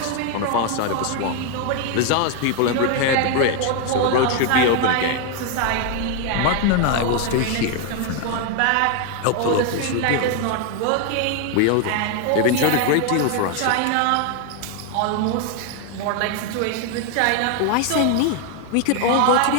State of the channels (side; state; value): both; different; correlation 0.01